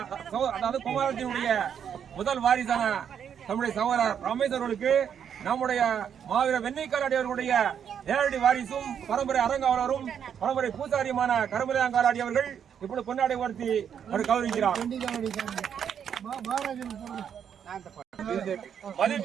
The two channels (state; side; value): quieter; left; 8.2 dB